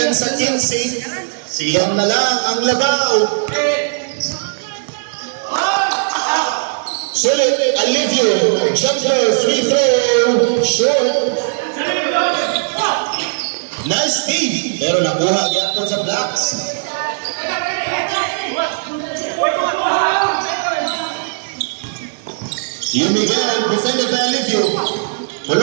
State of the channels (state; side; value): silent; left; 65 dB below the other